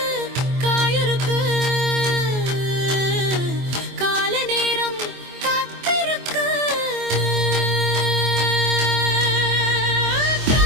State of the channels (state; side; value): late; left; 24 ms